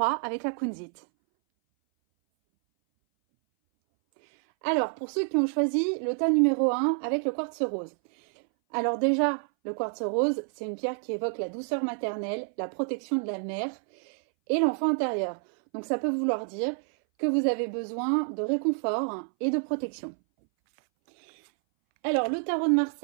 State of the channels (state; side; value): silent; left; 59 dB below the other